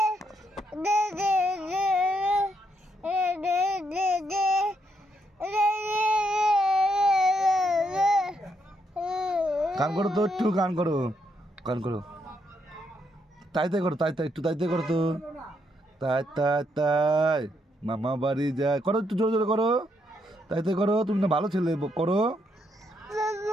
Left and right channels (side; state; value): both; normal; correlation 0.76